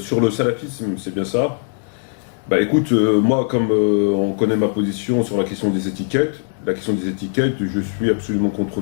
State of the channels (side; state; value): right; silent; 59 dB below the other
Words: le salafisme, c'est bien ça. Bah écoute, moi, comme on connaît ma position sur la question des étiquettes, je suis absolument contre